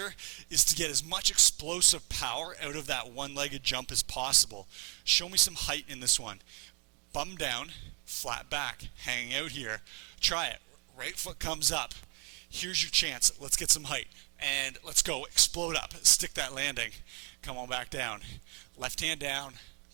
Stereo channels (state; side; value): quieter; left; 35.3 dB